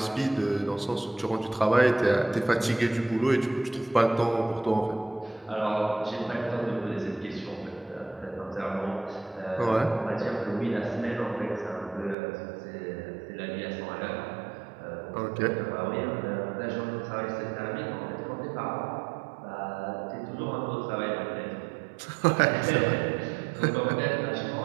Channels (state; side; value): drops out; left; at 12.2 s